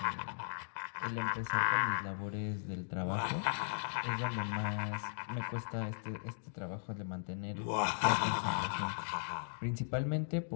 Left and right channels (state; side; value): silent; right; digital silence